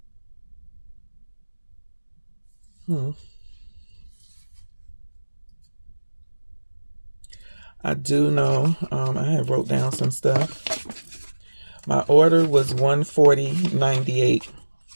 I do know, I have wrote down some stuff. My order was $140.98.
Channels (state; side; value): inverted; both; correlation -1.00